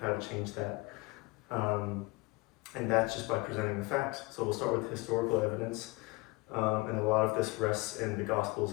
how to change that. And that's just by presenting the facts. So we'll start with historical evidence. And a lot of this rests in the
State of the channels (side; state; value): right; quieter; 24.5 dB